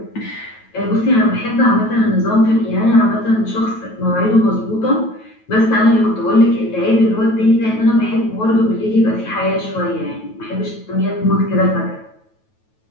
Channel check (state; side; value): late; right; 9.2 ms